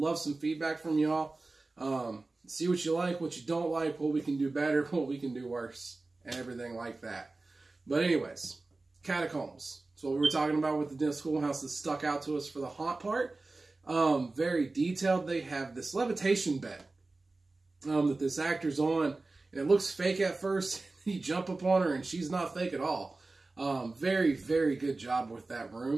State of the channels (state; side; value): quieter; left; 3.4 dB